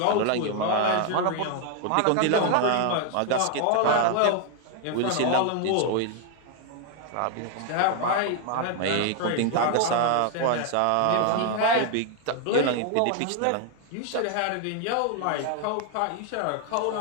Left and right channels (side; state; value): both; different; correlation 0.00